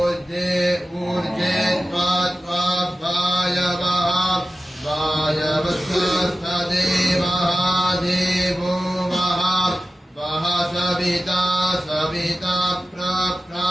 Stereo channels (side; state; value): both; normal; correlation 0.94